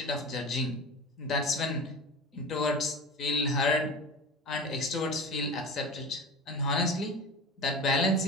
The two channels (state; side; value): normal; both; correlation 0.31